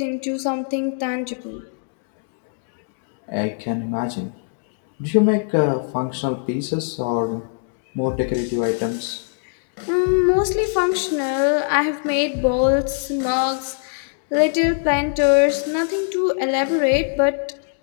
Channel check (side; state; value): right; silent; digital silence